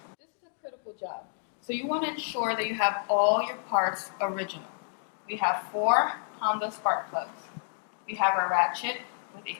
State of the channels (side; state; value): right; silent; digital silence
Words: This is a critical job. So you want to ensure that you have all your parts original. We have 4 Honda spark plugs. We have our ratchet with